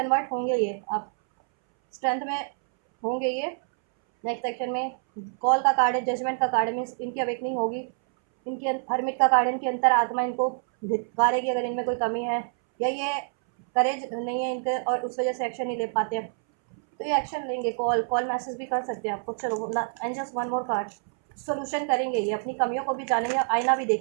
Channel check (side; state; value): left; silent; 60 dB below the other